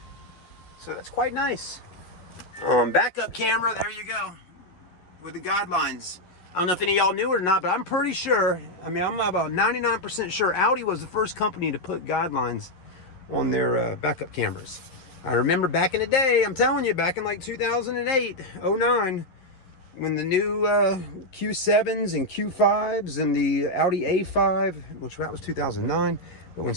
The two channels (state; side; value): late; right; 11 ms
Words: So that's quite nice. Backup camera, there you go, with the guidelines. I don't know if any of y'all knew it or not, but I'm pretty sure, I'm about 99% sure Audi was the first company to put guidelines on their backup cameras. I remember back in the day, I'm telling you, back in like 2008, 09, when the new Q7s and Q5s and the Audi A5, which that was 2009, but when